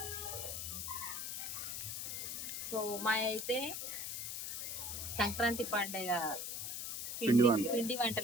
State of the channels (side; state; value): left; noise; hiss, 4 dB below the sound